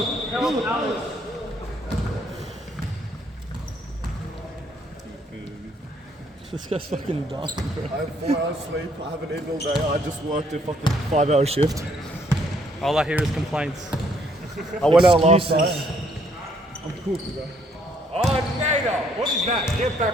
This guy's fucking dumb, bro. I have 4 hours sleep. I haven't eaten all day. I just worked a fucking 5-hour shift. All I hear is complaints. I went out last night. I'm cooked, bro. Oh, Nader. What is that? Get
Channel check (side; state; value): both; normal; correlation 0.67